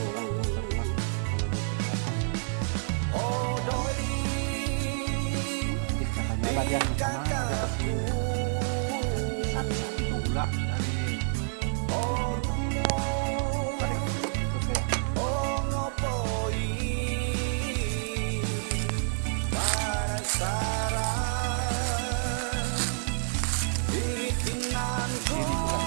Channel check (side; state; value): left; silent; 59 dB below the other